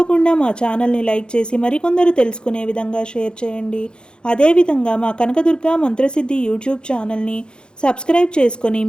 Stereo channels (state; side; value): late; right; 0.049 ms